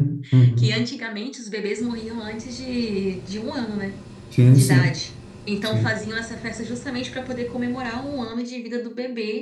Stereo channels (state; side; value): identical; both; correlation 1.00